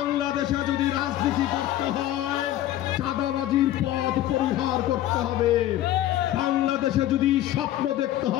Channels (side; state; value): right; quieter; 13.4 dB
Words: যদি রাজনীতি করতে হয় চাঁদাবাজির পথ পরিহার করতে হবে। বাংলাদেশে যদি স্বপ্ন দেখতে